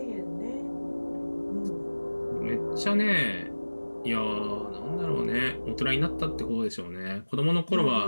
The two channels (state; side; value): inverted; both; correlation -1.00